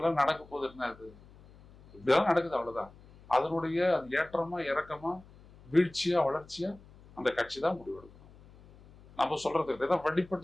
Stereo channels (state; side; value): noise; left; hum, 23 dB below the sound